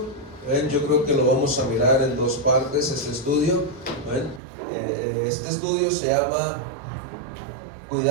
yo creo que lo vamos a mirar en dos partes. Este estudio se llama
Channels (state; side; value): drops out; left; at 4.4 s